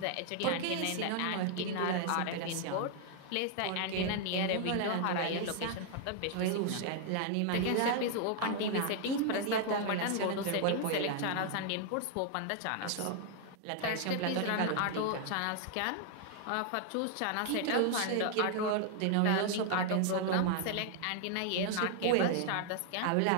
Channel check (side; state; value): both; different; correlation 0.00